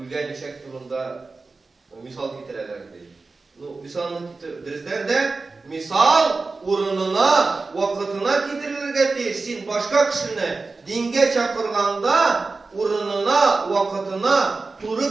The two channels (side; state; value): left; quieter; 3.8 dB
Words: içek durumda misal getirirlerdi. Misalını getirirler de misal urununa, vakitına getirilirge değilsin. Başka kişini dinge çakırganda urununa, vakitına